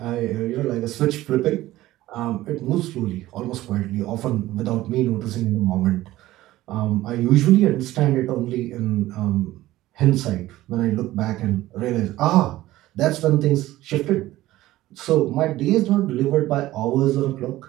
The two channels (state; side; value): quieter; left; 16.1 dB